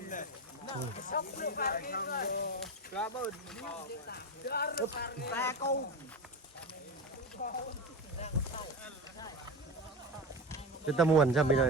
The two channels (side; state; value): both; normal; correlation 0.23